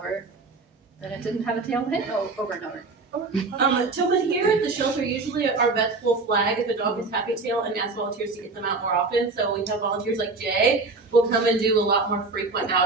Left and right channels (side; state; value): left; quieter; 3.8 dB